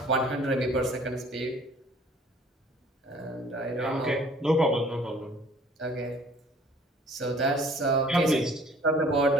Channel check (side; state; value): both; normal; correlation 0.53